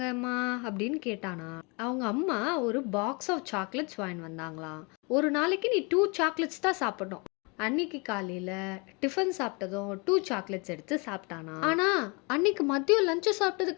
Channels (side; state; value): right; quieter; 30.4 dB